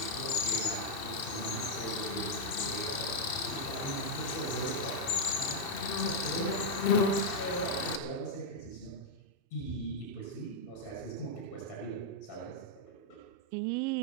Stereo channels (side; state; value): right; late; 2.6 ms